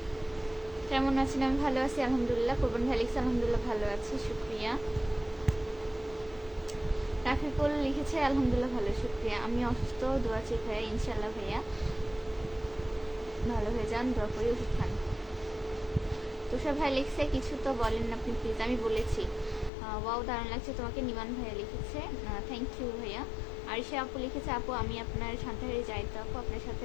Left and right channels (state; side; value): drops out; right; at 19.7 s